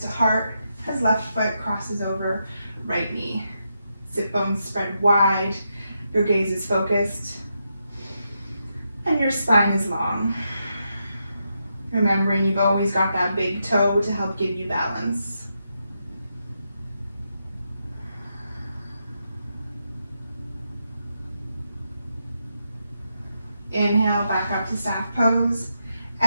heart, as left foot crosses over right knee. Sit bones spread wide, your gaze is focused, and your spine is long. Remembering you've always got that big toe to help give you balance. Inhale, back up to staff pose.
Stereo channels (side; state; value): both; inverted; correlation -0.84